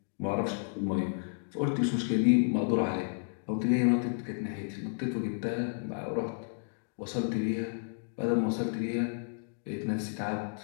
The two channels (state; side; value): silent; right; digital silence